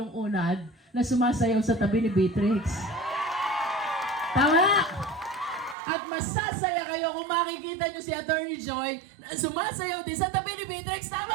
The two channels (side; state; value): left; drops out; at 5.8 s